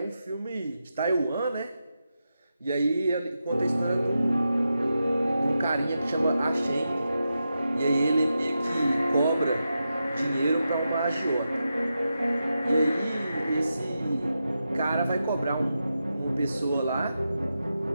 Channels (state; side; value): inverted; both; correlation -0.88